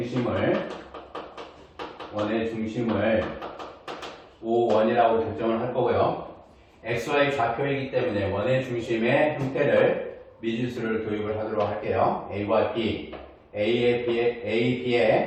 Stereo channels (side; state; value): both; identical; correlation 1.00